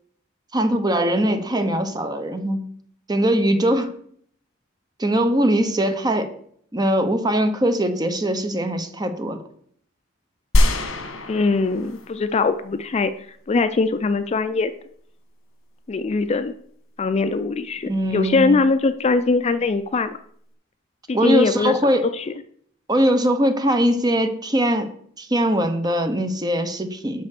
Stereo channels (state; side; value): normal; both; correlation 0.61